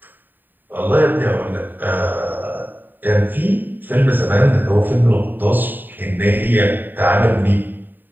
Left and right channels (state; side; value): late; left; 0.090 ms